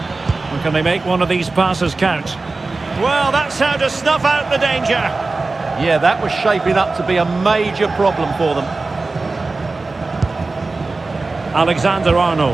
And can they make one of these passes count? Well, that's how to snuff out the danger. Yeah, that was shaping up to be a major problem for them.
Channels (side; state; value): left; quieter; 3.6 dB